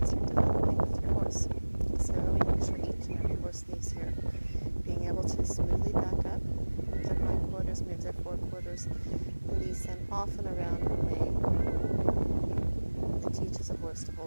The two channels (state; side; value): inverted; both; correlation -1.00